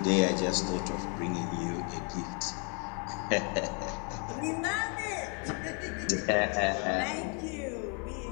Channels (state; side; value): quieter; right; 37.4 dB